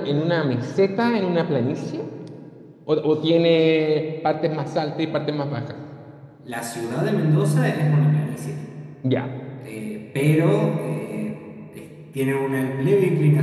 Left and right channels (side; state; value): both; identical; correlation 1.00